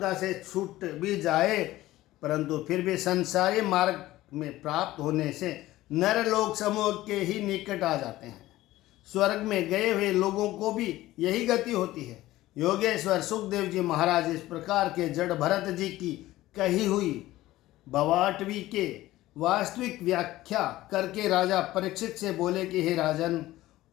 से छूट भी जाए, परंतु फिर भी संसारी मार्ग में प्राप्त होने से नर लोक समूह के ही निकट आ जाते हैं। स्वर्ग में गए हुए लोगों को भी यही गति होती है। योगेश्वर सुखदेव जी महाराज इस प्रकार के जड़ भरत जी की कही हुई भवाटवी के वास्तविक व्याख्या करके राजा परीक्षित से बोले कि हे राजन,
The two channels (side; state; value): right; quieter; 16.3 dB